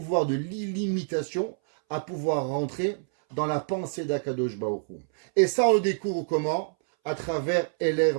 de l'illimitation à pouvoir rentrer dans la pensée d'Akadosh Baruch Hu. Et ça, on le découvre comment? À travers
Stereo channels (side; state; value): left; silent; 60 dB below the other